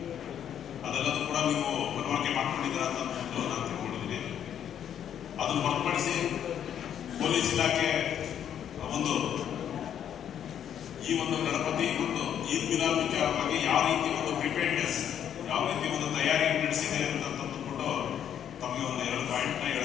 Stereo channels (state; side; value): quieter; right; 9.5 dB